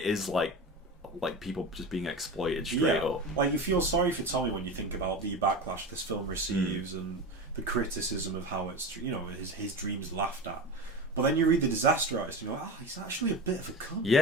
is like people just being exploited straight up. Like you feel sorry for Tommy when you think about the backlash this film receives and the criticism of how it's his dreams laughed at. But then you read the disaster artist, and you're like, oh, he's actually a bit of a cunt.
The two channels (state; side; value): normal; both; correlation 0.26